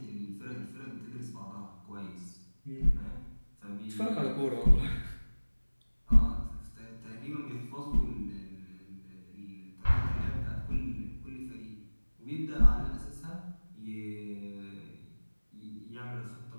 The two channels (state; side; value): inverted; both; correlation -1.00